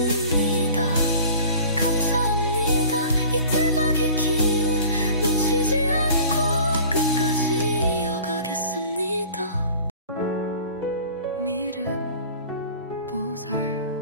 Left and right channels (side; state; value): both; inverted; correlation -0.44